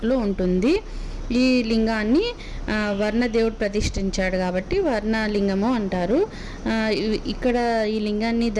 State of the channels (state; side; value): identical; both; correlation 1.00